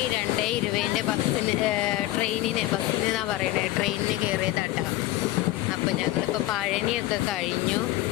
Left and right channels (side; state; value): right; quieter; 16.3 dB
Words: 2:20 ബസ്സിന് ബസ്സിനെന്നാണ് പറയണേ, ട്രെയിനിന് കയറിയതാട്ടോ. അപ്പോൾ ഞങ്ങളിപ്പോൾ പഴനിയൊക്കെ കഴിഞ്ഞു.